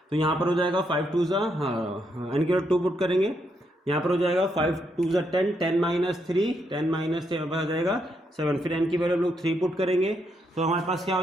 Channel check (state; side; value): normal; both; correlation 0.78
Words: तो यहाँ पर हो जाएगा 5 2 ज़ा, हाँ n की वैल्यू 2 पुट करेंगे, यहाँ पर हो जाएगा 5 2 ज़ा 10, 10 - 3, 10 - 3 आ जाएगा 7। फिर n की वैल्यू हम लोग 3 पुट करेंगे, तो हमारे पास क्या हो